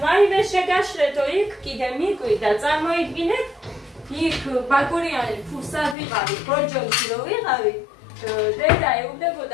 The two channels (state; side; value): drops out; right; at 6.0 s